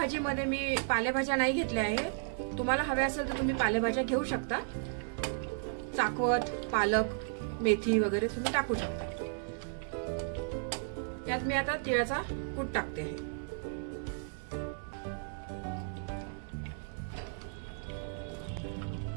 मी पालेभाज्या नाही घेतल्या आहे। तुम्हाला हव्या असेल तर तुम्ही पालेभाज्या घेऊ शकता। चाकवत, पालक, मेथी वगैरे तुम्ही टाकू शकता। यात मी आता तिळाचा कूट टाकते आहे।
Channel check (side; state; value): left; silent; digital silence